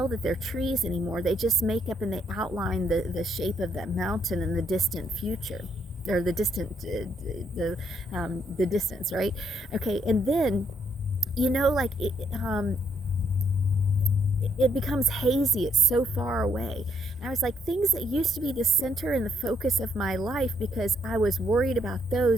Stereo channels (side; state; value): both; normal; correlation 0.73